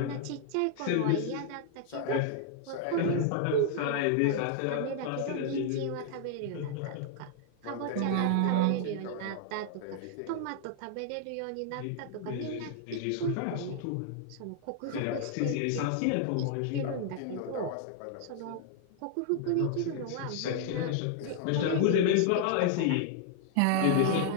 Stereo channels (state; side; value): different; both; correlation 0.00